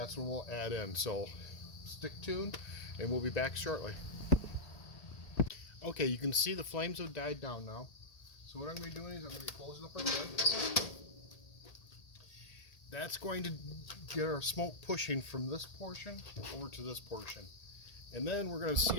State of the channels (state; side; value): late; right; 1.8 ms